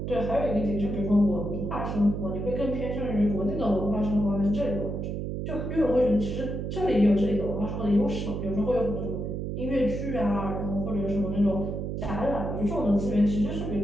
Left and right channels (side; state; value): right; noise; hum, 3 dB below the sound